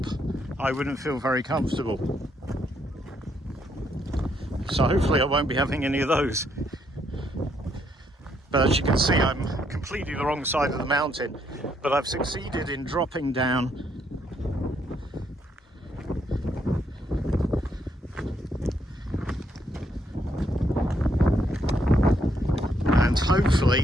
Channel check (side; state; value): both; normal; correlation 0.73